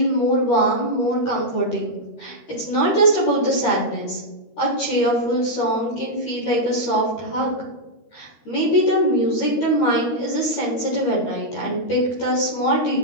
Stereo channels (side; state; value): right; late; 13 ms